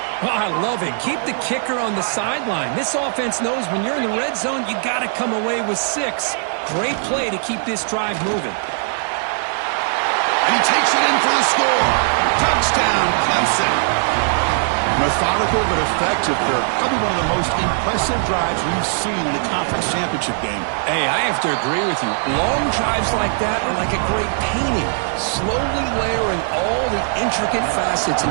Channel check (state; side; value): silent; left; 66 dB below the other